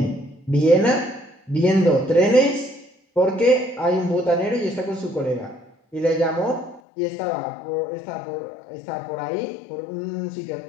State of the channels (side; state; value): right; drops out; at 6.8 s